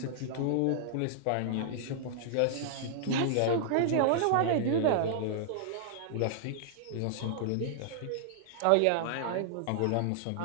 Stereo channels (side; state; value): both; different; correlation -0.01